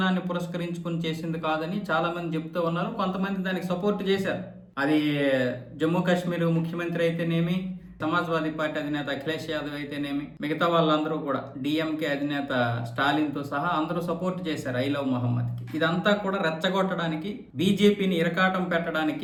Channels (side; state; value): both; identical; correlation 1.00